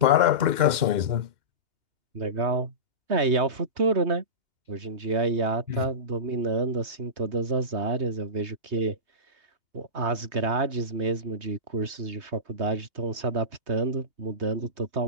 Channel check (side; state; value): left; late; 2.1 ms